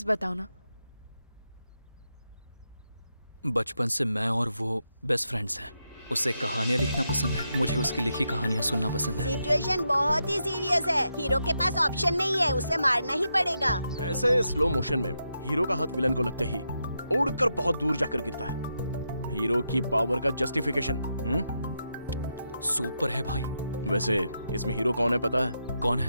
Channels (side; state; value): both; inverted; correlation -0.84